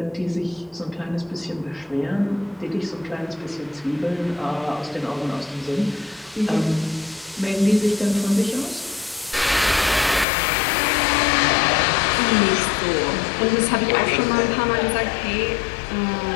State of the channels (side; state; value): right; drops out; at 10.2 s